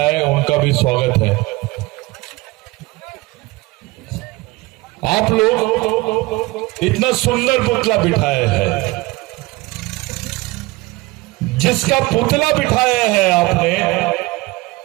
उनका भी स्वागत है। आप लोग इतना सुंदर पुतला बिठाए हैं, जिसका पुतला बिठाया है आपने,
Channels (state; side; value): quieter; left; 21.7 dB